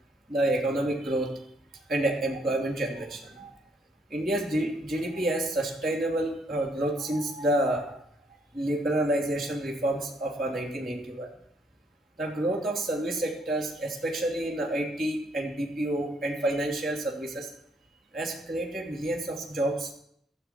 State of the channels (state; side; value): normal; both; correlation 0.69